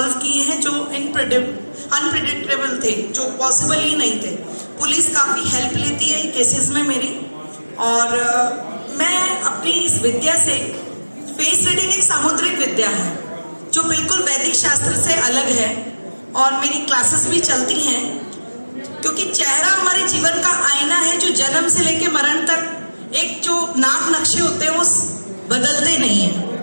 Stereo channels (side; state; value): both; inverted; correlation -1.00